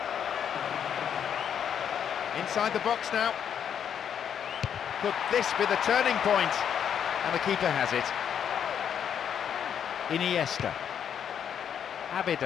Inside the box now. Could this be the turning point? And the keeper has it. Iniesta.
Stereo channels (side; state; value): right; quieter; 8.5 dB